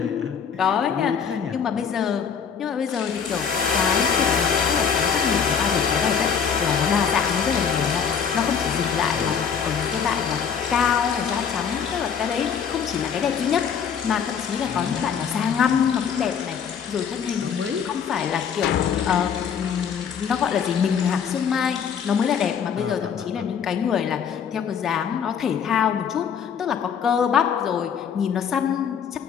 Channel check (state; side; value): quieter; right; 7.2 dB